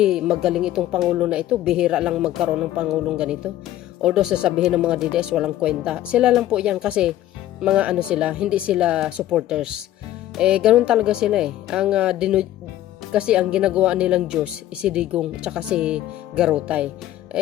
magaling itong pangulo na ito, bihira lang magkaroon ng pangulong ganito. Although sasabihin ng mga DDS walang kwenta. Sila lang po yan kasi mga ano sila, hindi sila supporters. Ganun talaga sila kasi ang ginagawa nilang Diyos si Digong tsaka si Garutay.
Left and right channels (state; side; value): quieter; right; 13.5 dB